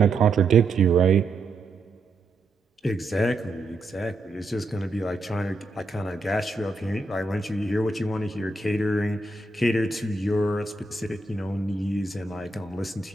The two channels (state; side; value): quieter; left; 3.2 dB